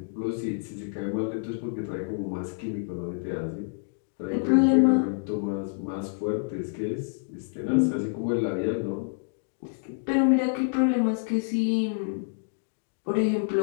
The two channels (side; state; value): right; silent; digital silence